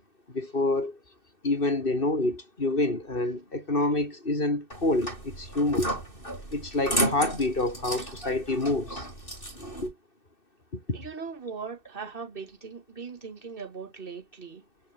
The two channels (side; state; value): right; late; 2.6 ms